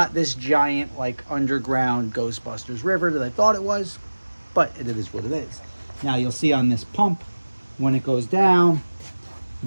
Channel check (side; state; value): both; inverted; correlation -1.00